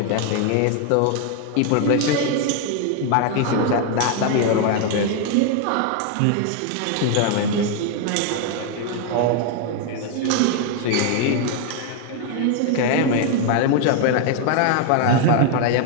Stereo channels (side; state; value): both; different; correlation 0.01